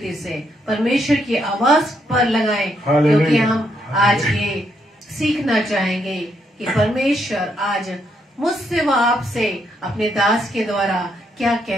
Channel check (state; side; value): normal; both; correlation 0.76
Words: से परमेश्वर की आवाज पर लगाएं, क्योंकि हम आज ये सीखना चाहेंगे कि परमेश्वर आज मुझसे व आपसे अपने दास के द्वारा क्या